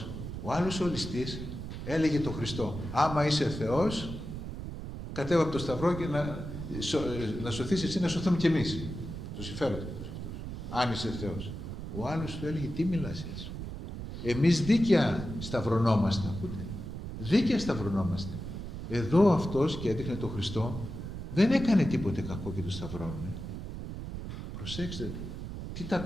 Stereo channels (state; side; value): noise; right; rumble, 7 dB below the sound